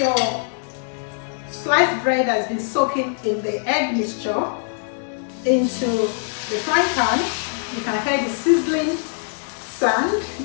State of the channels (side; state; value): right; silent; digital silence